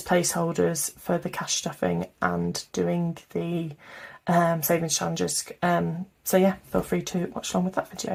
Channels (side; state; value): both; identical; correlation 1.00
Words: placeholders for the cash stuffing and doing the savings challenges. So yeah, feel free to watch along with that